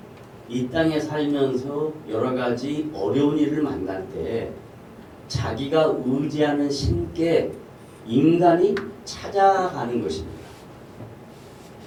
이 땅에 살면서 여러 가지 어려운 일을 만날 때 자기가 의지하는 신께 인간이 찾아가는 것입니다.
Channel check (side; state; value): both; identical; correlation 1.00